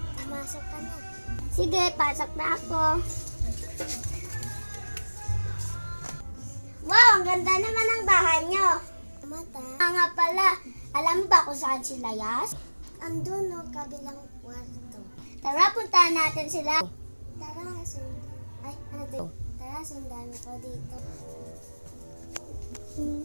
pumasok ka na. Sige, pasok na ako. Wow, ang ganda naman ng bahay nyo. Mata. Nga pala, alam mo ba kung saan sila, Yas? Andun no, kabilang kwarto. Tara, puntahan natin sila. Tara, sundan ako dito.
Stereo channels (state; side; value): inverted; both; correlation -1.00